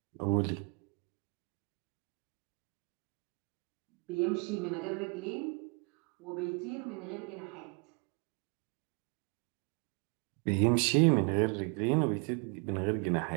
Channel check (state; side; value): quieter; left; 35.1 dB